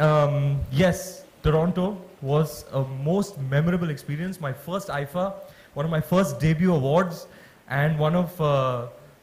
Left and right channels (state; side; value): identical; both; correlation 1.00